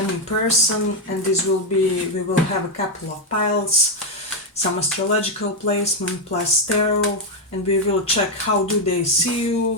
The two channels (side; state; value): both; normal; correlation 0.03